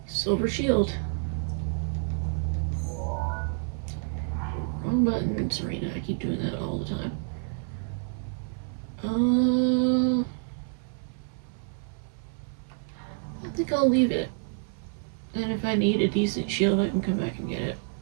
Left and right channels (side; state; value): left; silent; 59 dB below the other